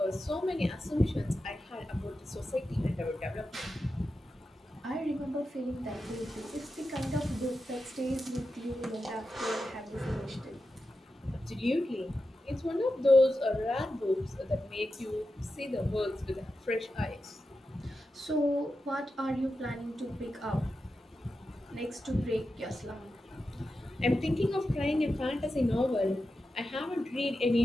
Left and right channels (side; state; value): both; normal; correlation 0.90